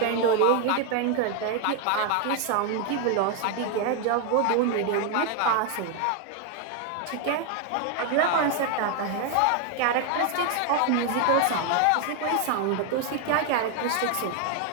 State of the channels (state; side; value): different; both; correlation 0.01